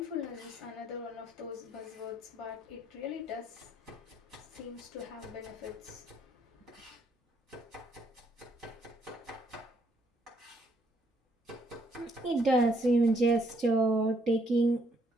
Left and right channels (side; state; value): both; normal; correlation 0.70